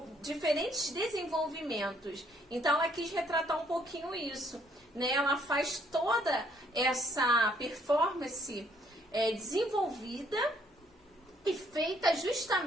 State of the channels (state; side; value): normal; both; correlation 0.66